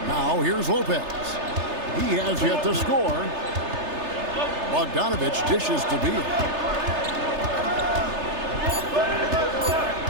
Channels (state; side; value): late; left; 3.3 ms